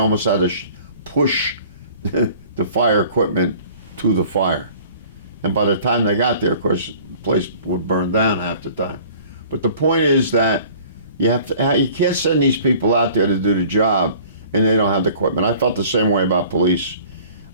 had to push the fire equipment to the fire. And by the time they got there, of course, the place would burn down half the time. But the point is that you can't send these people out there to do the job and they don't have the equipment. I felt the same way about police.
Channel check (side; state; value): both; inverted; correlation -0.50